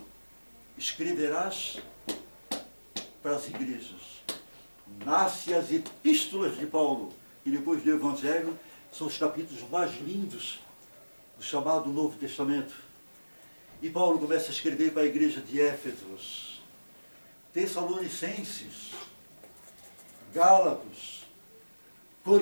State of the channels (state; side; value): inverted; both; correlation -1.00